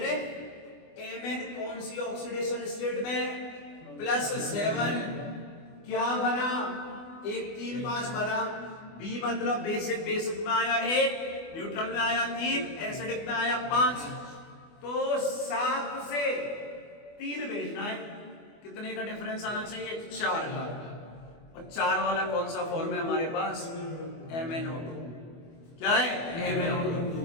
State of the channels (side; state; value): right; late; 24 ms